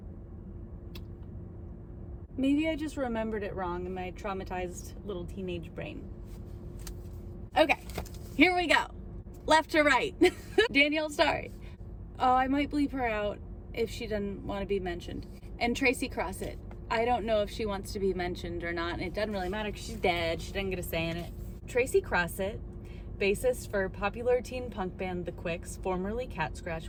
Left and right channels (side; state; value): both; identical; correlation 1.00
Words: Maybe I just remembered it wrong in my traumatized little teenage brain. Okay, here we go. Left to right. Danielle Starr. Oh, I might bleep her out if she doesn't want to be mentioned. And Tracy Crossett. I don't know if she wants to be mentioned or not, and it doesn't really matter because she's dead. She didn't get a say in it. Tracy Crossett, bassist for popular teen punk band The Quicks, formerly Cat